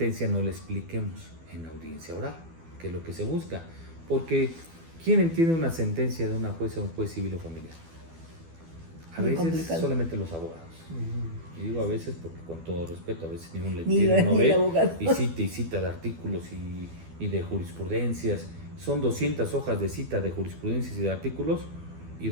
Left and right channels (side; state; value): left; late; 12 ms